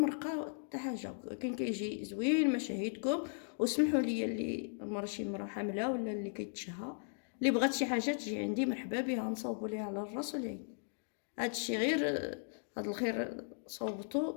حتى حاجه، كان كيجي زوين. مشاهدكم وسمحوا لي اللي شي مرا حامله ولا اللي كيتشهى اللي بغات شي حاجه تجي عندي مرحبا بها، نصاوبوا ليها على الراس والعين. هادشي غير هاد الخير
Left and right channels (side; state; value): right; silent; digital silence